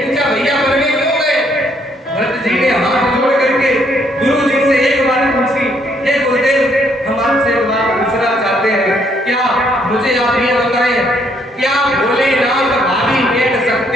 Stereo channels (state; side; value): normal; both; correlation 0.69